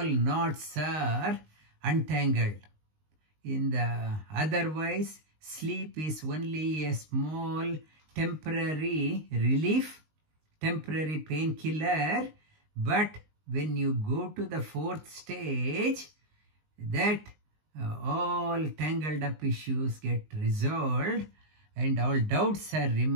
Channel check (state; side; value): late; left; 19 ms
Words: knots are untangled. In the otherwise, sleep is only a small temporary relief, temporary painkiller, but when you go to the fourth stage, that all tangled up issues get resolved, and all doubts are